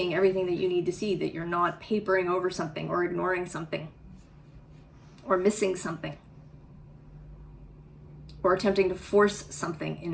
everything that you need to see, that you're not papering over something or ignoring something or missing something or attempting to force something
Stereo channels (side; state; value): both; identical; correlation 1.00